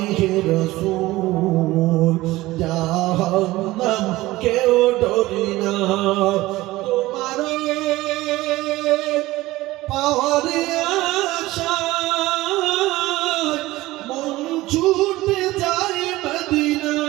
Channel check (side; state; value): left; quieter; 18.2 dB